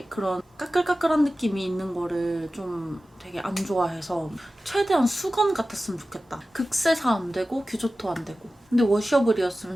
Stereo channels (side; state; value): both; normal; correlation 0.95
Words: 그런 까끌까끌한 느낌이 있는 거를 좀 되게 안 좋아해서 최대한 수건 같았으면 좋겠다. 극세사 안 되고 규조토 안 되고 근데